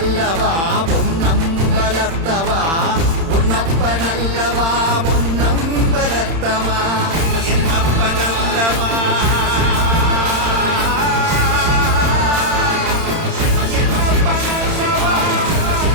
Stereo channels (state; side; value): late; left; 31 ms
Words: பொன்னம்பலத்தவா, பொன்னப்ப நல்லவா பொன்னம்பலத்தவா, என்னப்ப நல்லவா